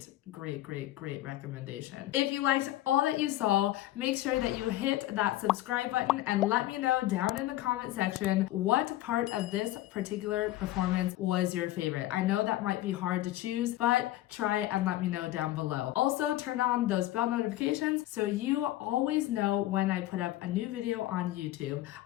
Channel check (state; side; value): quieter; right; 15.2 dB